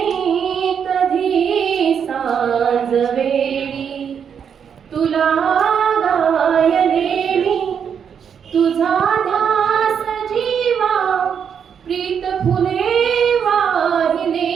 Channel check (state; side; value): quieter; left; 7.5 dB